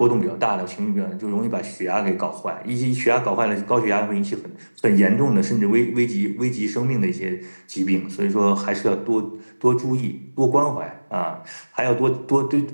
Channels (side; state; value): both; inverted; correlation -1.00